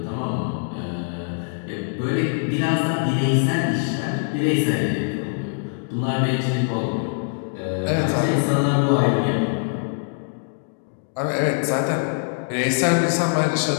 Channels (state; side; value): silent; right; digital silence